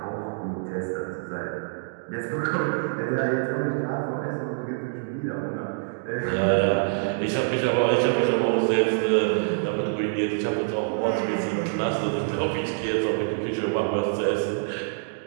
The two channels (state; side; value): silent; left; digital silence